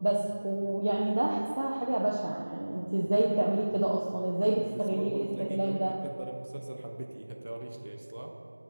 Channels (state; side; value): inverted; both; correlation -1.00